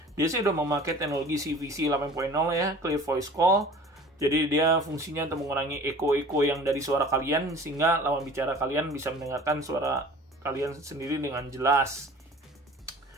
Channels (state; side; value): normal; both; correlation 0.44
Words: Dia sih udah memakai teknologi CVC 8.0 ya, Clear Voice Call. Jadi dia fungsinya untuk mengurangi eko-eko yang dari suara kalian, sehingga lawan bicara kalian bisa mendengarkan suara kalian sendiri dengan jelas.